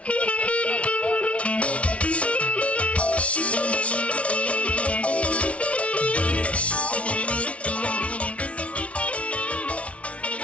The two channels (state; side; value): late; right; 0.063 ms